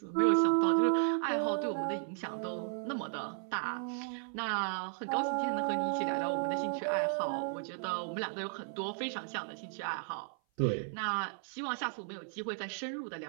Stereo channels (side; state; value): left; silent; 55 dB below the other